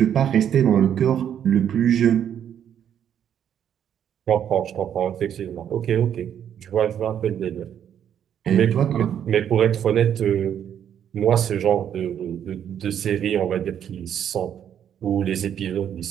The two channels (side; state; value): left; quieter; 9.3 dB